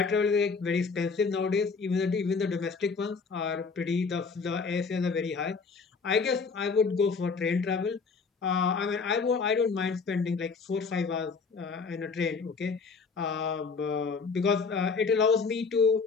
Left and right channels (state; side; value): quieter; right; 4.9 dB